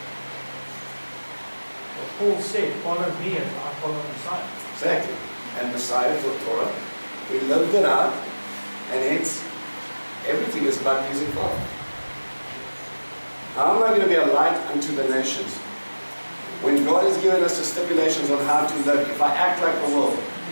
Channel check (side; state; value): both; inverted; correlation -1.00